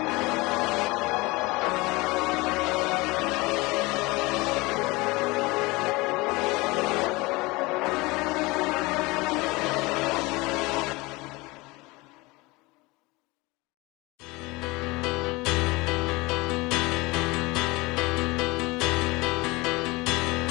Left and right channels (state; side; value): quieter; right; 23.3 dB